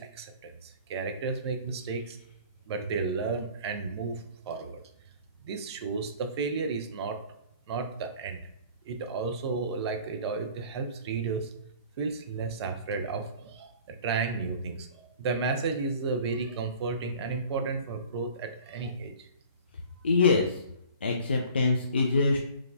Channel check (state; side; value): inverted; both; correlation -0.47